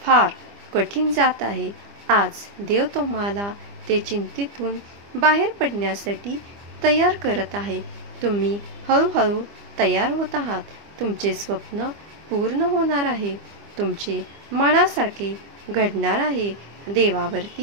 फार कठीण जात आहे. आज देव तुम्हाला ते चिंतेतून बाहेर पडण्यासाठी तयार करत आहे. तुम्ही हळूहळू तयार होत आहात. तुमचे स्वप्न पूर्ण होणार आहे. तुमचे मनासारखे घडणार आहे.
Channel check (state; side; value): late; left; 25 ms